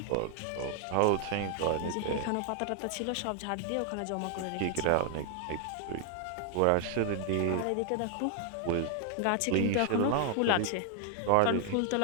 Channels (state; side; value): different; both; correlation 0.00